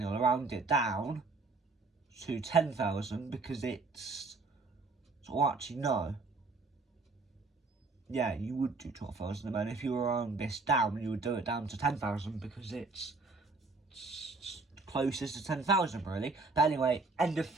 you'll round it down to 10,000 because it's... So actually, no. Yeah, you would do 12,000, and then if you were round this down, you would do it down to 10,000 because it's closest to 10,000, really. But anyway, end of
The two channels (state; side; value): quieter; left; 3.8 dB